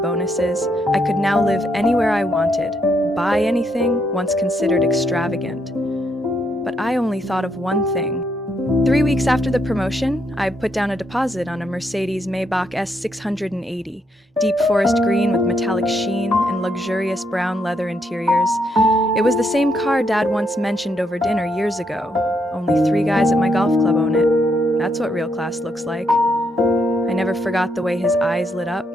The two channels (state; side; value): normal; both; correlation 0.76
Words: I could now live anywhere I wanted, buy anything once considered extravagant. But I only thought of one thing. 3 weeks after the promotion, I put down a deposit on a Mercedes Maybach S680, deep forest green with metallic sheen and luxurious brown leather interiors. It was the same car Dad once mentioned over dinner years ago. Only 3 guys at my golf club own it. That's what real class looks like. I never forgot the way his eyes lit up.